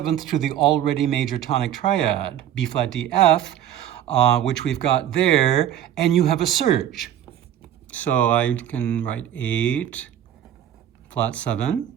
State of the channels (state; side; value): quieter; left; 10.8 dB